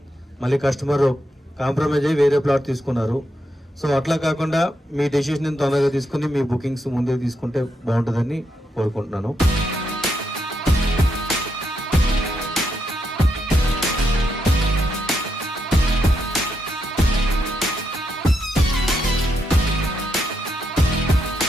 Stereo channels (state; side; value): normal; both; correlation 0.81